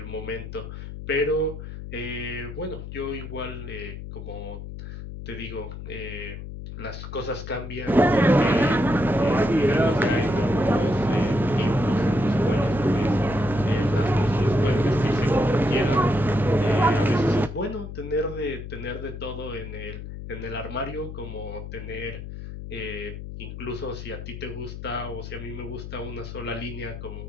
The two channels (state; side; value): noise; left; hum, 9 dB below the sound